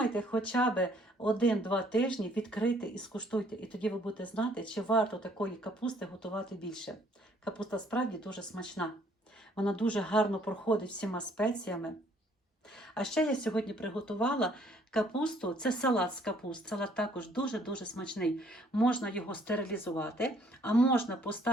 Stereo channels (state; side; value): normal; both; correlation 0.62